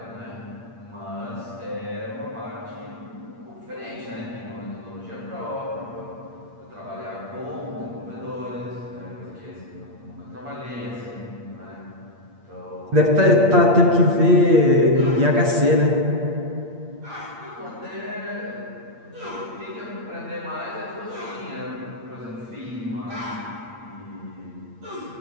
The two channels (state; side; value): late; left; 8.6 ms